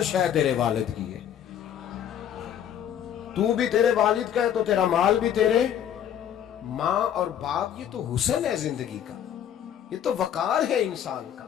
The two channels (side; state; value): right; quieter; 9.7 dB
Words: شے تیرے والد کی ہے, تو بھی تیرے والد کا ہے تو تیرا مال بھی تیرے. ماں اور باپ یہ تو حسن ہے زندگی کا, یہ تو وقار ہے انسان کا.